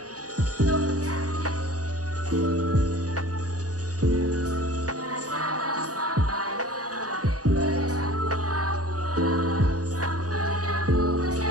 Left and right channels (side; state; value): left; late; 0.67 ms